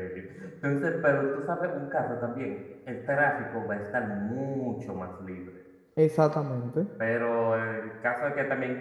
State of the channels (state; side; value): identical; both; correlation 1.00